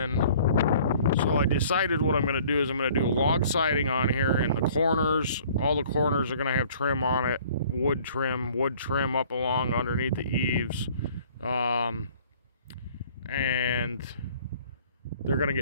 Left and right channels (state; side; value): inverted; both; correlation -0.54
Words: So I decided what I'm going to do is I'm going to do log siding on here, and the corners, all the corners are going to have trim on it. Wood trim up along underneath the eaves. And they're going to